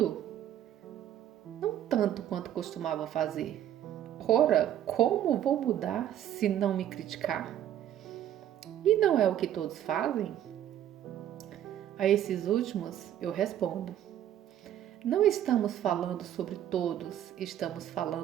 Não tanto quanto costumava fazer. Ora, como vou mudar se não me criticar? E não é o que todos fazem? A esses últimos eu respondo: não estamos falando sobre todos, estamos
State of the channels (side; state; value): left; quieter; 11.2 dB